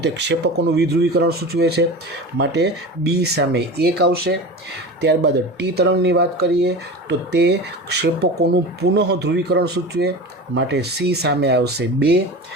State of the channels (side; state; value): both; normal; correlation 0.31